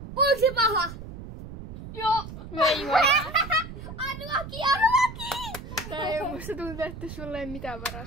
Onko se paha? Joo. Ei voi. Unlucky! Tää ei oo, musta tuntuu, että sulle ei mitään varaa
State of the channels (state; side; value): noise; right; rumble, 11 dB below the sound